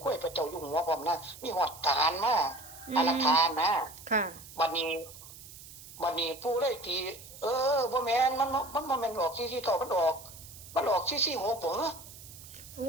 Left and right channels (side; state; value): right; noise; hiss, 17 dB below the sound